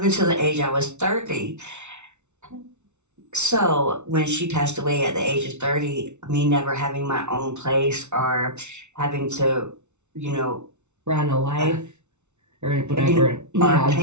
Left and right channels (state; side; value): late; left; 0.82 ms